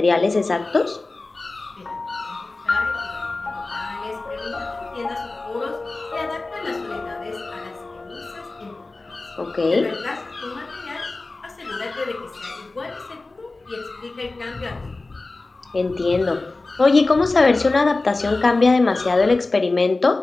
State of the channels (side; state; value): right; quieter; 3.3 dB